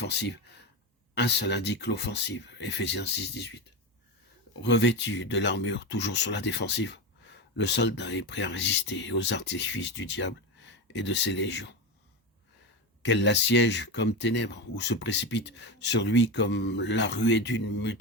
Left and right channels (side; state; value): both; normal; correlation 0.18